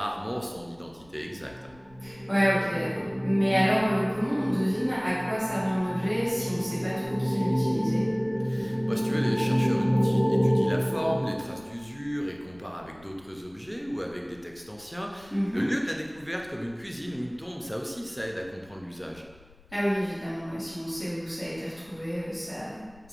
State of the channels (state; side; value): noise; left; rumble, 25 dB below the sound